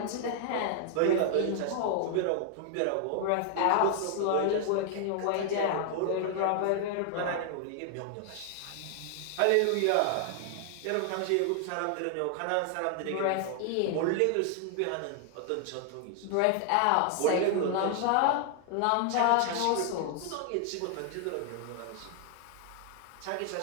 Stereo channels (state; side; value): different; both; correlation 0.00